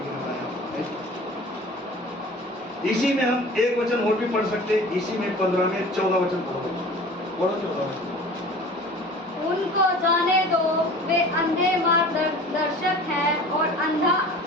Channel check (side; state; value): both; normal; correlation 0.42